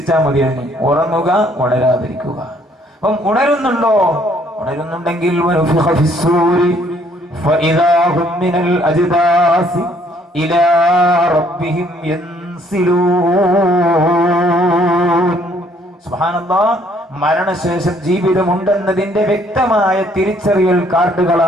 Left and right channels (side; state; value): both; normal; correlation 0.64